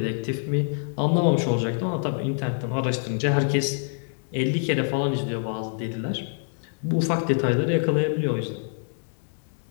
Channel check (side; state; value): right; silent; digital silence